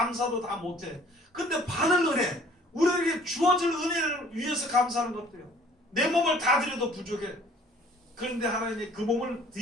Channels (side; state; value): both; normal; correlation 0.54